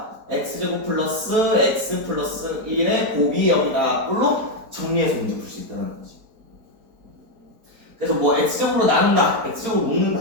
x제곱 플러스 x 플러스 1의 곱이 여기다 꼴로 정리해서 문제 풀 수 있다는 거지. 그래서 뭐 x제곱으로 나눈다, x제곱으로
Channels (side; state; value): left; late; 4.4 ms